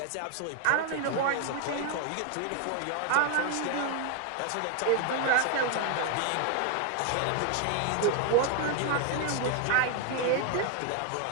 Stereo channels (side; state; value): both; different; correlation 0.00